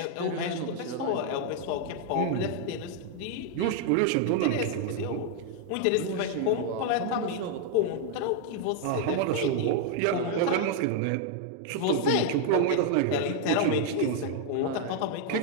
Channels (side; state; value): both; different; correlation 0.00